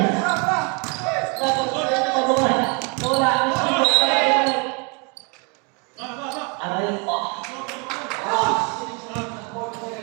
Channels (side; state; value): left; quieter; 33.5 dB